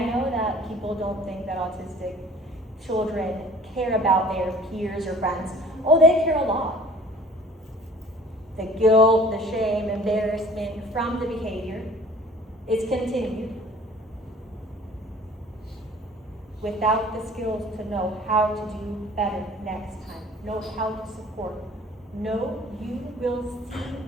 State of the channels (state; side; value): normal; both; correlation 0.49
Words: know that people don't think that autistic children care about their peers or friends. Oh, they care a lot. The guilt, the shame, embarrassment from the behavior is continued without the skills to know how to do better next time, know how to support. No, you will